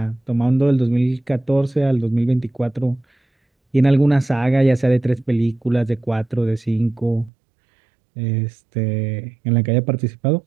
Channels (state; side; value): drops out; left; at 7.3 s